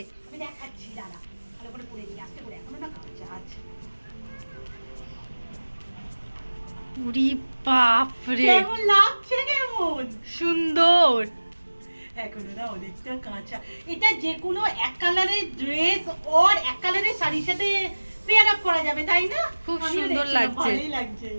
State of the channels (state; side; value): inverted; both; correlation -1.00